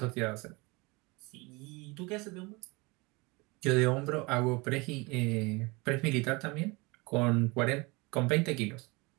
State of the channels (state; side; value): quieter; left; 25.9 dB